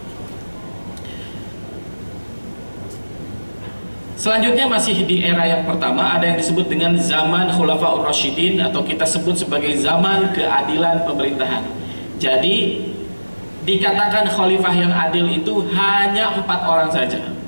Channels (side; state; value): both; inverted; correlation -1.00